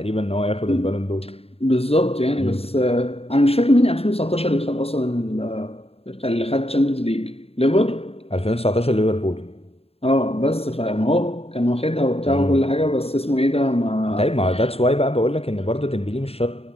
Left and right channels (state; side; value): late; right; 0.29 ms